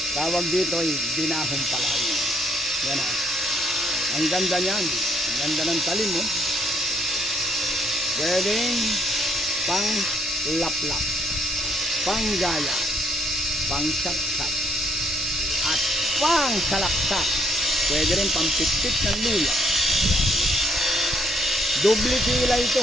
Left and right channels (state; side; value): normal; both; correlation 0.69